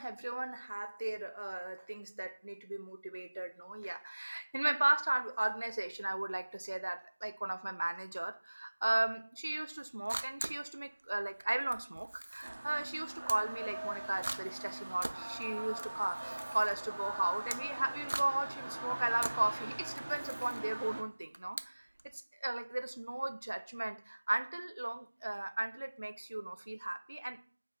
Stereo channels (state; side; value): inverted; both; correlation -1.00